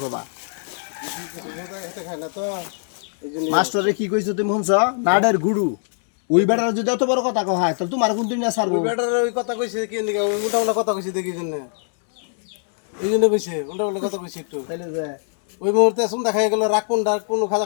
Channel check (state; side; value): silent; right; 64 dB below the other